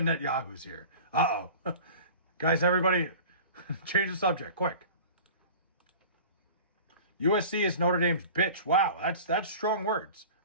Netanyahu's here. Uh-oh. Guys, everybody, change the subject, quick. USC is Notre Dame's bitch. Wow, that's strong words.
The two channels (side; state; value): both; inverted; correlation -0.39